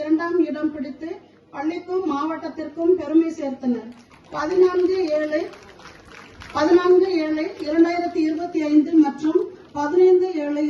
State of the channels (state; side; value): identical; both; correlation 1.00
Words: 2ஆம் இடம் பிடித்து பள்ளிக்கும் மாவட்டத்திற்கும் பெருமை சேர்த்தனர். 14/7/2025 மற்றும்